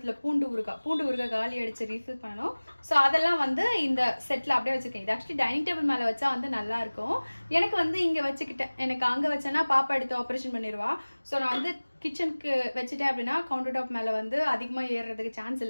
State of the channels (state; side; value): inverted; both; correlation -1.00